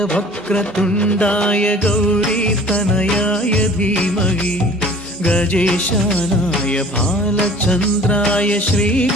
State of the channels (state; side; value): normal; both; correlation 0.48